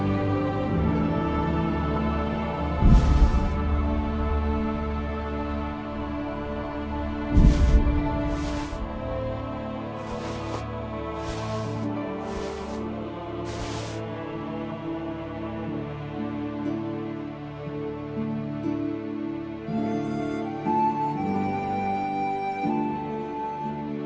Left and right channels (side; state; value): both; identical; correlation 1.00